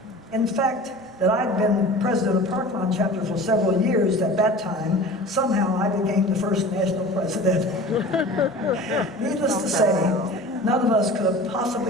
In fact, that I'd been president of Park Lawn chapter for several years at that time, somehow I became the first national president. Needless to say, none of us could have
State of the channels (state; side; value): normal; both; correlation 0.39